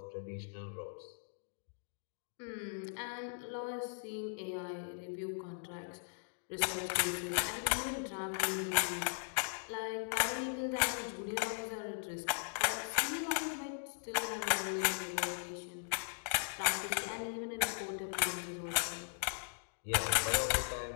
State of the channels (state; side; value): silent; right; digital silence